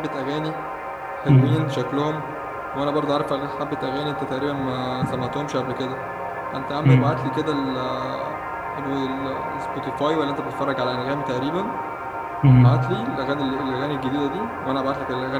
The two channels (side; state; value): both; identical; correlation 1.00